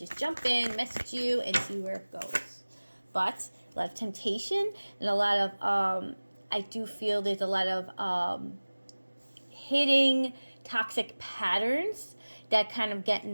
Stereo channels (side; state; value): both; inverted; correlation -1.00